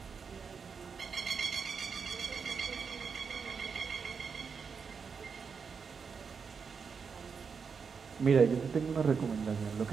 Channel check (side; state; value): left; quieter; 5.8 dB